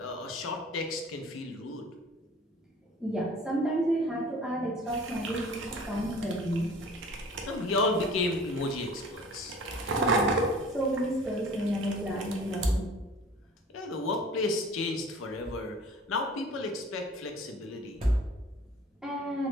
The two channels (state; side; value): normal; both; correlation 0.46